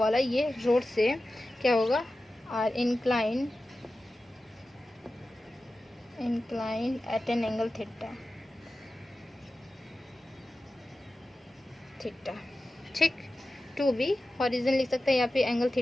ये रोड से क्या होगा, are inclined at an angle theta, ठीक। 2B हॉरिजन लिख सकते हैं, यहाँ पे एंगल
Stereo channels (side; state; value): both; normal; correlation 0.94